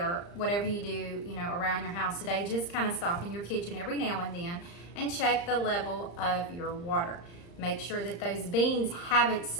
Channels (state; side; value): late; right; 35 ms